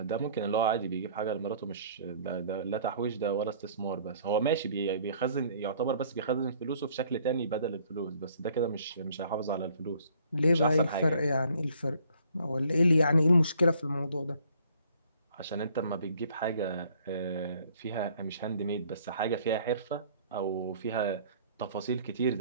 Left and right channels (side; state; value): both; inverted; correlation -0.58